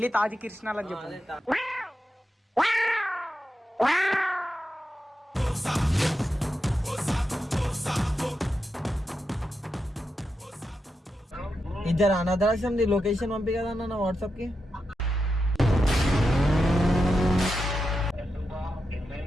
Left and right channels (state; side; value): normal; both; correlation 0.88